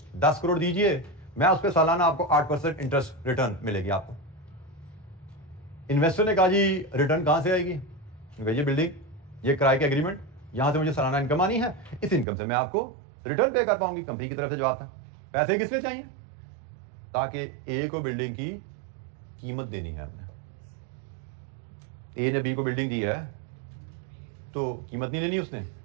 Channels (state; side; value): drops out; left; at 12.2 s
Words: 10 करोड़ दीजिए, मैं उस पर सालाना आपको 8% इंटरेस्ट रिटर्न मिलेगी आपको। इन्वेस्टर ने कहा जी रिटर्न कहां से आएगी? ये बिल्डिंग, ये किराए के एग्रीमेंट, यहां से मुझे सालाना इनकम आनी है, इस इनकम से मैं आपको रिटर्न पे कर पाऊंगी। कंपनी की तरफ से जवाब था। पैसे किस लिए चाहिए? ताकि ए को बिल्डिंग की कीमत देनी है हमने। ए ने बी को बिल्डिंग दी है तो कीमत नहीं लेनी उसने,